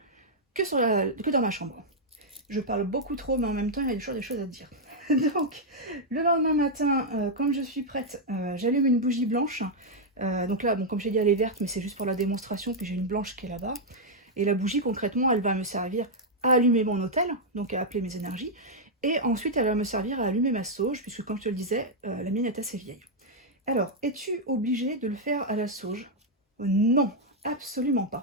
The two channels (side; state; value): both; normal; correlation -0.03